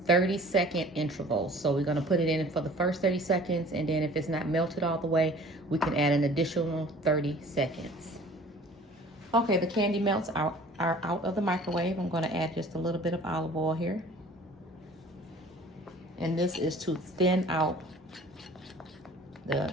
30-second intervals. So we're gonna put it in for the first 30 seconds, and then if it's not melted all the way, we can add an additional 30 seconds. Okay, the candy melts are out of the microwave. I'm gonna add just a little bit of olive oil here. And this is to thin out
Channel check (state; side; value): normal; both; correlation 0.49